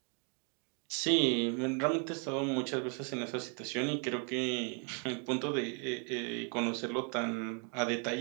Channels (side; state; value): left; quieter; 37.5 dB